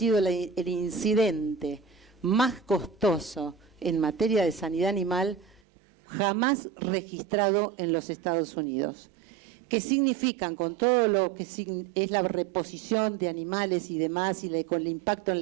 el incidente más costoso en materia de sanidad animal jamás registrado en los Estados Unidos. ¿Qué significan con todo lo que es la reposición de animales y demás y con el impacto en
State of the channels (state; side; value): drops out; left; at 5.6 s